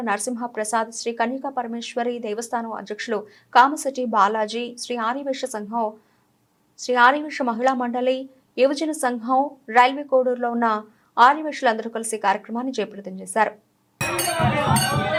నరసింహ ప్రసాద్, శ్రీ కన్యకా పరమేశ్వరి దేవస్థానం అధ్యక్షులు కామశెట్టి బాలాజీ, శ్రీ ఆర్యవైశ్య సంఘం, శ్రీ ఆర్యవైశ్య మహిళా మండలి, యువజన సంఘం, రైల్వే కోడూరులో ఉన్న ఆర్యవైశ్యులందరూ కలిసి కార్యక్రమాన్ని జయప్రదం చేశారు.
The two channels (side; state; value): both; identical; correlation 1.00